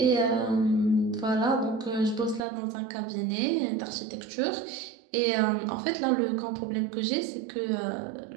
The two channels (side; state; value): left; drops out; at 2.4 s